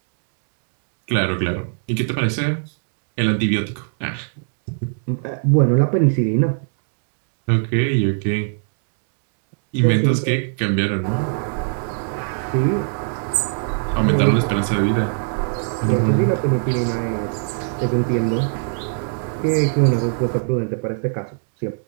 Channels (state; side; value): silent; left; digital silence